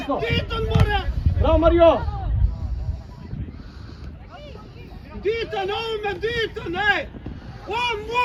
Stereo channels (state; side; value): identical; both; correlation 1.00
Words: Diton more! Bravo, Mario! Diton, ovome, Diton, ej! On